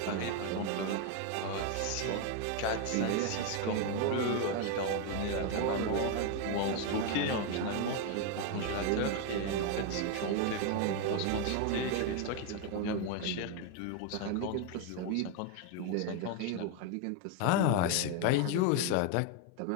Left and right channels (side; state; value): both; different; correlation 0.01